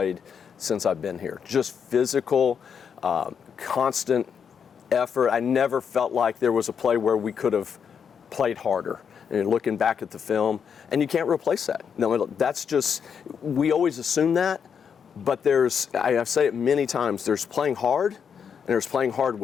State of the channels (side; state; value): right; quieter; 7.1 dB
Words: since I've been here. Just physical, constant effort. I never felt like there was a play where we could have played harder. And looking back at the film, and you can't replace that. No, that's just, we always assume that, but I say it many times, there's playing hard, and there's playing hard